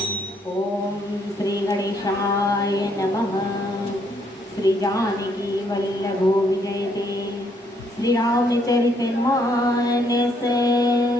ओम श्री गणेशाय नमः। श्री जानकी वल्लभो विजयते श्री रामचरित मानस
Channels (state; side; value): normal; both; correlation 0.70